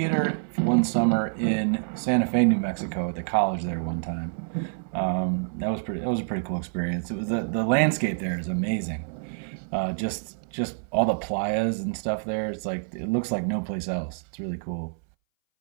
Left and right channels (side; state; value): left; silent; 60 dB below the other